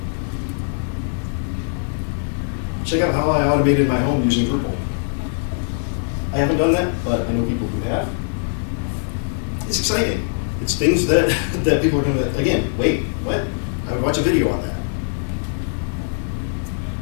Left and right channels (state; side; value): silent; right; 65 dB below the other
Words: Check out how I automated my home using Drupal. I haven't done that, but I know people who have. It's exciting. It's things that, that people are gonna, again, wait, what? I would watch a video on that.